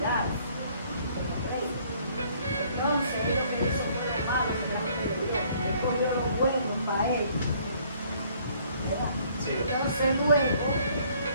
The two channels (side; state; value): both; inverted; correlation -0.61